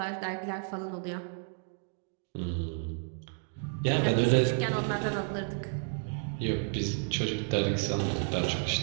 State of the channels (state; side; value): silent; left; 57 dB below the other